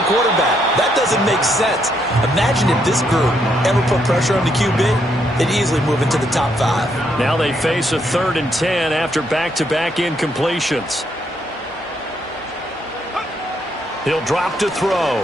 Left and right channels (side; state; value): both; normal; correlation 0.75